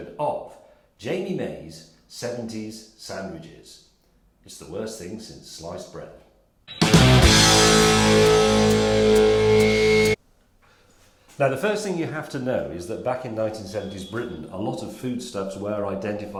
of Jamie May's 70s Sandwiches. It's the worst thing since sliced bread. Now the first thing you have to know is that back in 1970s Britain, a lot of foodstuffs were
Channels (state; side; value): identical; both; correlation 1.00